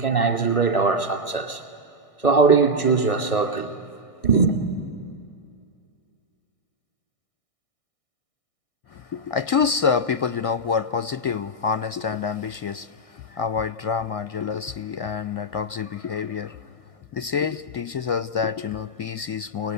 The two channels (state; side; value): late; right; 1.6 ms